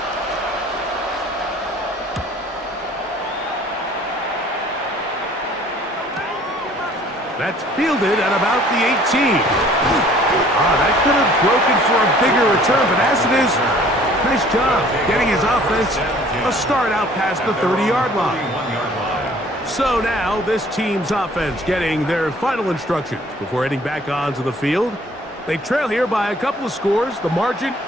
That's fielded at about the 18. That could have broken for a bigger return, but as it is, nice job getting his offense a start out past the 30-yard line. So now this team's offense getting their final instructions before heading back onto the field. They trail here by a couple of scores. The margin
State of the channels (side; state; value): both; normal; correlation 0.54